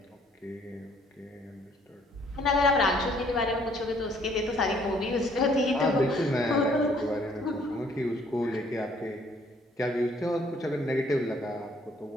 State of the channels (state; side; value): normal; both; correlation 0.63